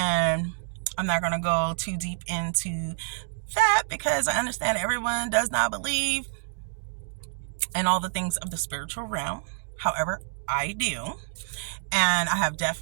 I'm not going to go too deep into that because I understand everyone does not believe in all the things of the spiritual realm. However, I do. And I have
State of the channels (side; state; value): left; silent; digital silence